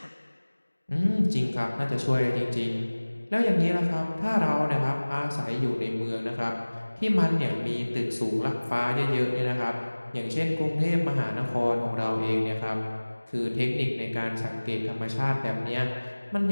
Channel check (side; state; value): both; inverted; correlation -1.00